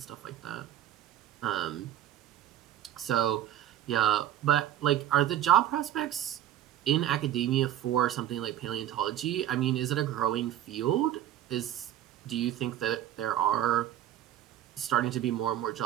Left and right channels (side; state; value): left; quieter; 11.8 dB